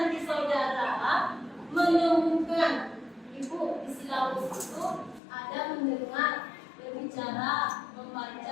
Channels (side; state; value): right; drops out; at 5.2 s